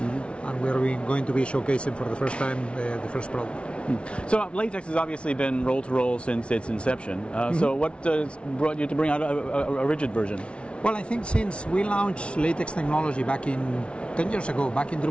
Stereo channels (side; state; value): right; late; 0.059 ms